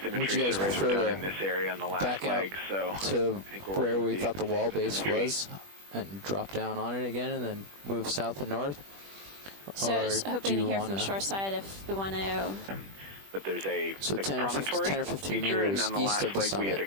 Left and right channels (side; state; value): left; late; 21 ms